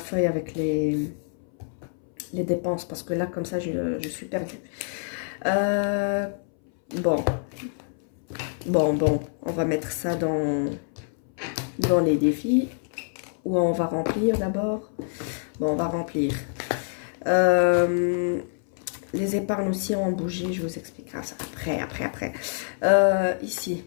avec les dépenses. Parce que là, comme ça, je suis perdue. Bon. On va mettre ça dans les défis. Ou on va remplir d'abord. Bon, on va remplir. Les épargnes aussi ont bougé. Je vous expliquerai ça après. Ici.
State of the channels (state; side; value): silent; right; 60 dB below the other